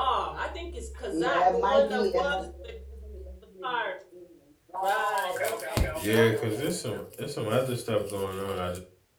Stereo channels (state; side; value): identical; both; correlation 1.00